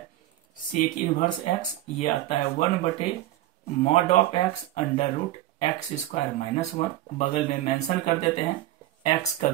sec इनवर्स x, ये आता है 1/mod x √x² - 1। बगल में मेंशन कर देते हैं, x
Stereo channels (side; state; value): left; quieter; 14.6 dB